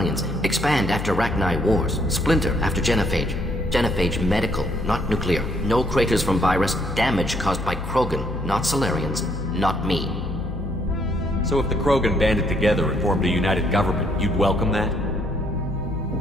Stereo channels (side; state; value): left; noise; hum, 7 dB below the sound